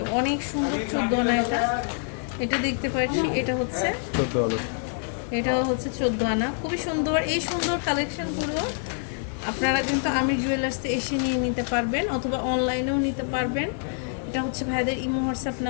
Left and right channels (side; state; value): right; silent; 56 dB below the other